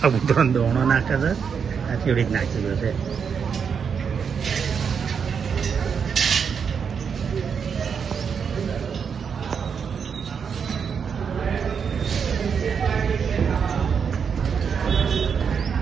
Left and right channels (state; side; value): quieter; left; 6.6 dB